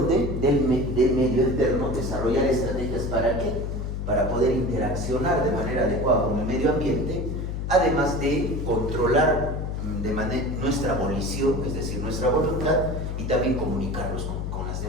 Del medio externo, desarrollar estrategias ¿para qué? Para poder interaccionar de manera adecuada con el medio ambiente, además de controlar nuestra volición, es decir, nuestra voluntad, y también comunicarnos con las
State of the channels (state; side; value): noise; left; hum, 3 dB below the sound